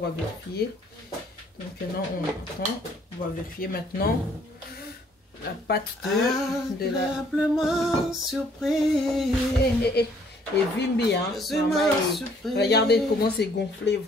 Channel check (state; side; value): normal; both; correlation 0.62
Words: vérifier. Donc maintenant on va vérifier maintenant la pâte de la surprise. Et Vimbi, hein. Regardez comment c'est gonflé